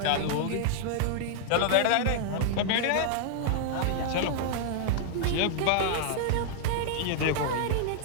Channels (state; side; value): different; both; correlation -0.01